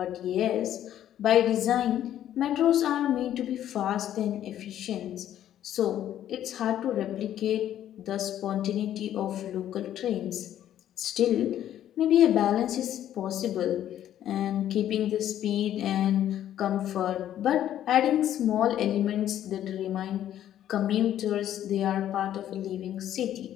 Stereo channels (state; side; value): quieter; right; 11.4 dB